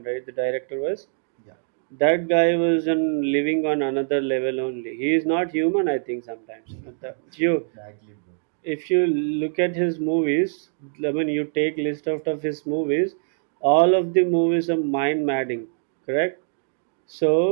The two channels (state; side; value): silent; left; digital silence